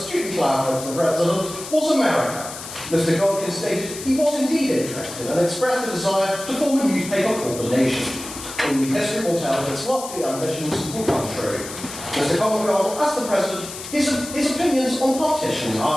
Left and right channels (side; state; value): left; noise; hiss, 11 dB below the sound